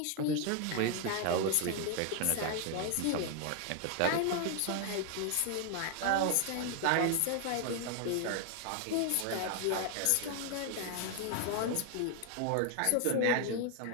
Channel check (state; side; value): different; both; correlation 0.00